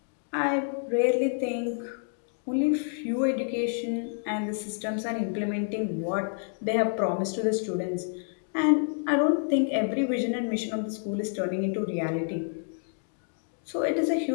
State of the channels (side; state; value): right; silent; digital silence